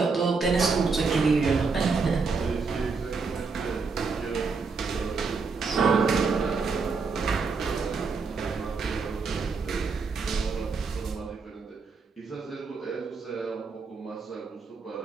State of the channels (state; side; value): quieter; left; 4.7 dB